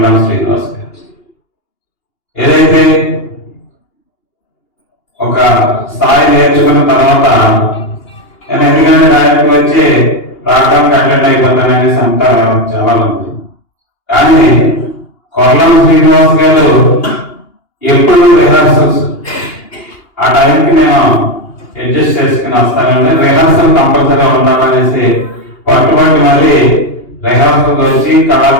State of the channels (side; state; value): right; late; 2.8 ms